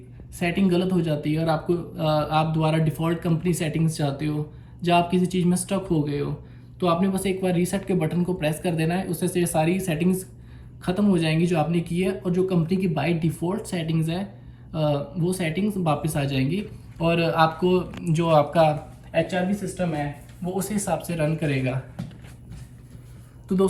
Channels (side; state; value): both; identical; correlation 1.00